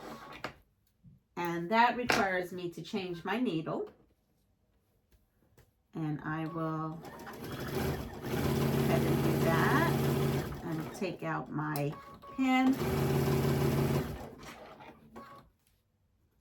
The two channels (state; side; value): identical; both; correlation 1.00